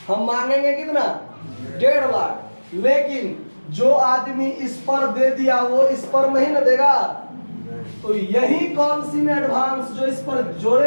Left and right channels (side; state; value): both; inverted; correlation -1.00